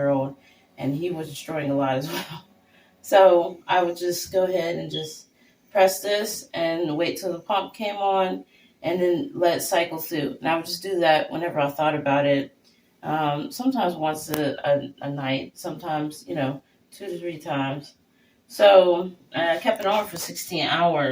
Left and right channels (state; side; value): identical; both; correlation 1.00